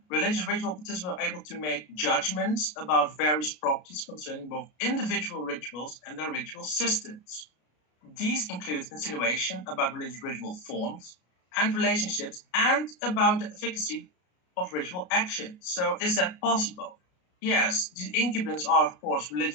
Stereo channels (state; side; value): late; right; 33 ms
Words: religious ritual participants are able to make judgments about various properties concerning both individual rituals and their ritual systems. These include insinuation about religious ritual forms and relationships, and about the efficacy of ritual action. So is that possible? Yes, the incubants are, of course,